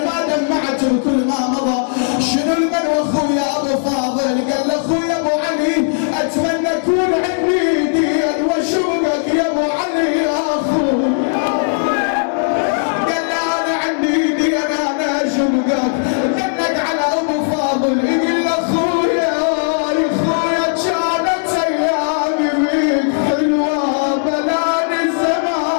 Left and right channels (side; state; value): right; silent; digital silence